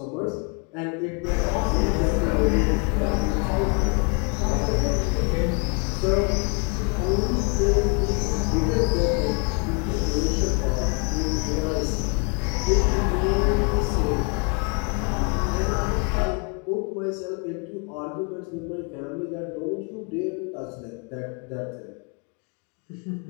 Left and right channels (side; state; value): right; quieter; 34.3 dB